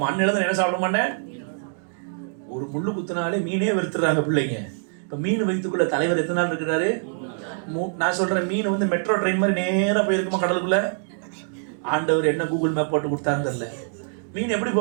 அன்னையில தான் என்ன சாப்பிட மாட்டேன். ஒரு முள்ளு குத்தினாலே மீனே வெறுத்துறாங்க பிள்ளைங்க. இப்ப மீன் வயிற்றுக்குள்ள தலைவர் எத்தனை நாள் இருக்கிறாரு? நான் சொல்றேன், மீன் வந்து மெட்ரோ ட்ரெயின் மாதிரி நேரா போயிருக்குமா கடலுக்குள்ள? ஆண்டவர் என்ன கூகுள் மேப் போட்டு கொடுத்தான்னு தெரியல. மீன் எப்படி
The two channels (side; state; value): left; silent; digital silence